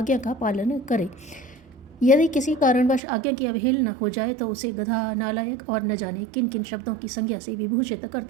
का पालन करे। यदि किसी कारणवश आज्ञा की अवहेलना हो जाए तो उसे गधा, नालायक और न जाने किन किन शब्दों की संज्ञा से विभूषित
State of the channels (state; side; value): drops out; left; at 3.0 s